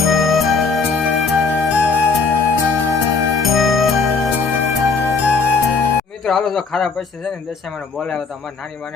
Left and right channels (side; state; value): right; quieter; 4.7 dB